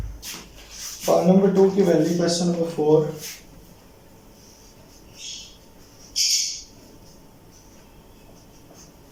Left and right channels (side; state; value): both; identical; correlation 1.00